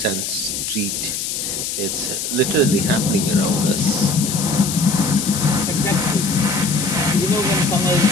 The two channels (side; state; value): left; noise; hiss, 3 dB below the sound